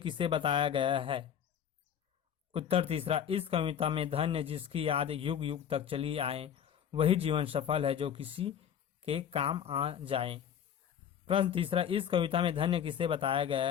बताया गया है? उत्तर तीसरा, इस कविता में धन्य जिसकी याद युग युग तक चली आए वही जीवन सफल है जो किसी के काम आ जाए। प्रश्न तीसरा, इस कविता में धन्य किसे बताया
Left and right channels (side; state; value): right; quieter; 9.0 dB